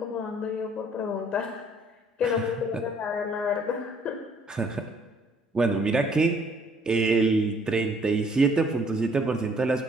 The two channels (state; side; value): normal; both; correlation 0.61